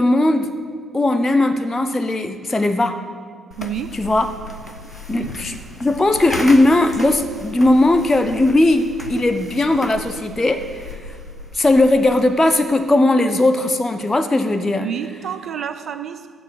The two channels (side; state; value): both; normal; correlation 0.89